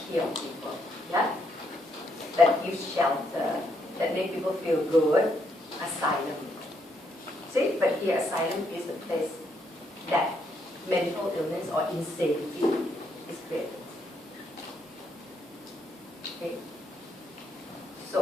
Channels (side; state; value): both; normal; correlation 0.75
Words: heals people, yeah? That gives shelter, that makes people feel good. Asylum. See, but here asylum is the place that mental illness or insanity is created. Okay?